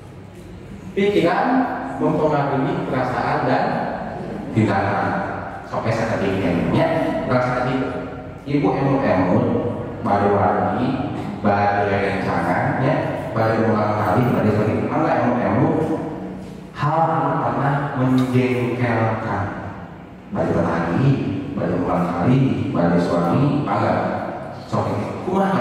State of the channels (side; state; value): both; identical; correlation 1.00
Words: Pikiran mempengaruhi perasaan dan tindakan. Sampai saat ini ya, perasaan itu. Ibu emo baru lagi. Baru rencangan ya, baru ulang kali, baru sering malah emu hal yang pernah menjengkelkan. Baru lagi, baru ulang kali, baru suami, bangga. Soalnya,